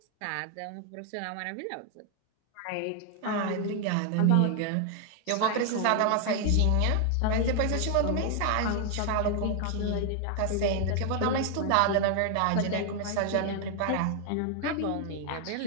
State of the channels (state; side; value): different; both; correlation 0.00